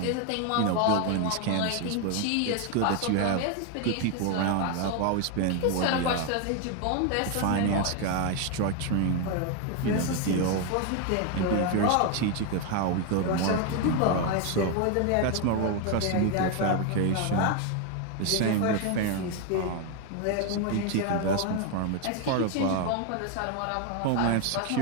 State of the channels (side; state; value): both; different; correlation 0.01